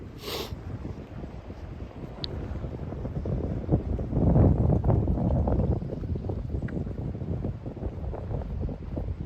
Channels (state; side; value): identical; both; correlation 1.00